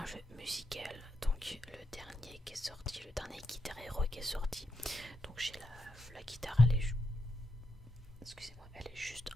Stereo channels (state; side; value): normal; both; correlation 0.83